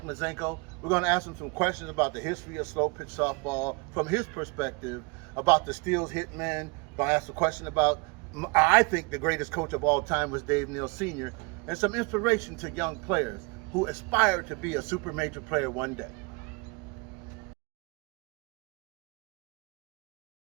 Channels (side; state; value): left; quieter; 30.2 dB